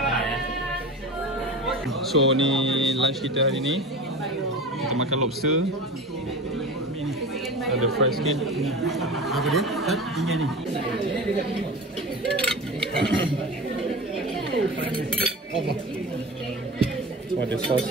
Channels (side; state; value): both; normal; correlation 0.32